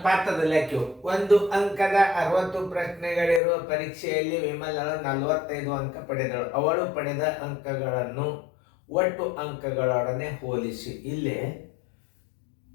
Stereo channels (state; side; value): drops out; right; at 3.4 s